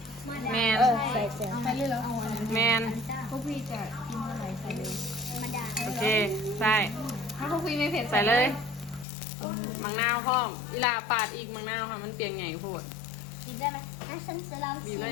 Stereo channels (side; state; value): right; drops out; at 9.1 s